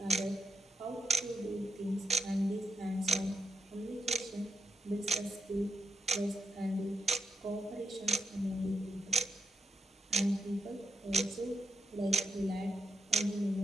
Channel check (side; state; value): both; normal; correlation 0.85